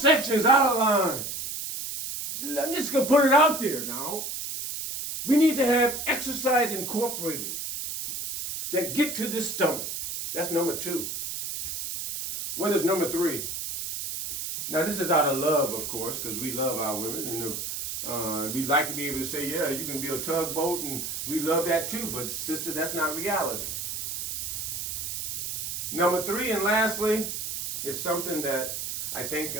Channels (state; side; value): noise; right; hiss, 5 dB below the sound